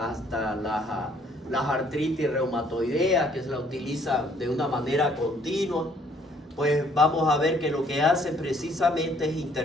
hasta las artritis reumatoideas que se la utilizan de una manera continua, pues vamos a ver que lo que hacen precisamente es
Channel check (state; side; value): normal; both; correlation 0.63